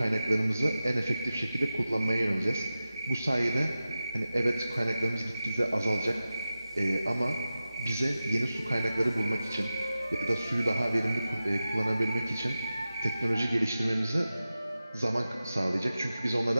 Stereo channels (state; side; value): inverted; both; correlation -0.94